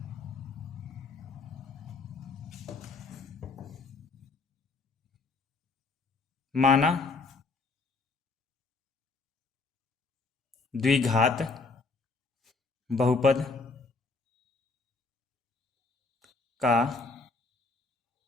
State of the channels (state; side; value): quieter; right; 3.9 dB